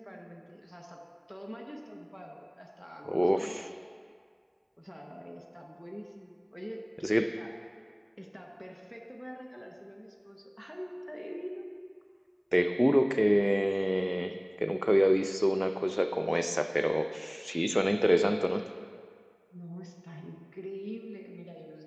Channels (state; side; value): identical; both; correlation 1.00